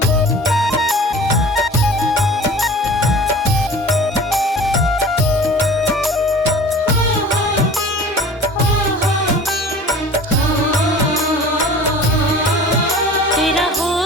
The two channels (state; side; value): normal; both; correlation 0.42